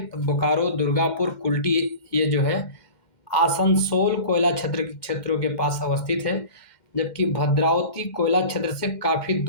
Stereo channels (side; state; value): right; late; 2.1 ms